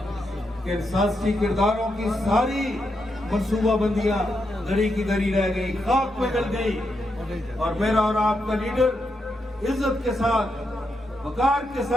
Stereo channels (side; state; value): both; normal; correlation 0.83